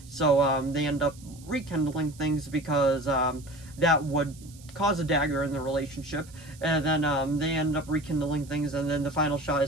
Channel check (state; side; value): noise; right; hiss, 23 dB below the sound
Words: So they end up rekindling things because that would cause a dagger in the relationship, and then they end up rekindling things, and then the final shot